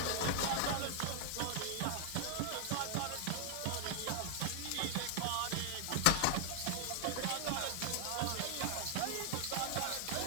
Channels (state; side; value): different; both; correlation -0.01